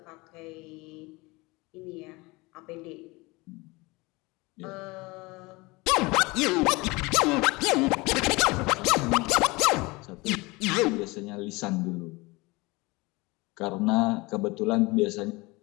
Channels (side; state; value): right; quieter; 23.8 dB